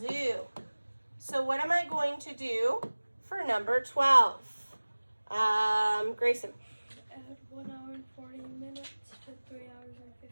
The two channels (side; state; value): both; inverted; correlation -1.00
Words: So what am I going to do for number 12? Grayson. Add 1 hour and 40 minutes to 3 hours and